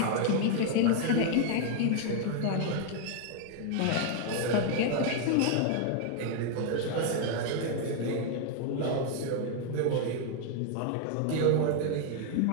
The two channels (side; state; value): both; different; correlation 0.00